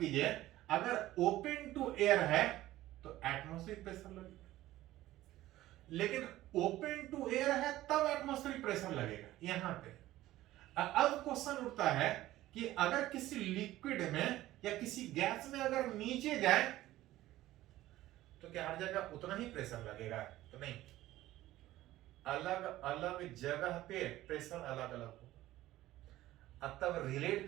अगर ओपन टू एयर है तो एटमॉस्फेरिक प्रेशर लगेगा, लेकिन ओपन टू एयर है तब एटमॉस्फेरिक प्रेशर लगेगा। यहां पे अब क्वेश्चन उठता है कि अगर किसी लिक्विड में या किसी गैस में अगर नीचे जाए तो क्या हर जगह उतना ही प्रेशर लगेगा? तो नहीं, अलग अलग जगह पे प्रेशर अलग अलग होगा। अब तब रिलेट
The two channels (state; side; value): quieter; left; 15.5 dB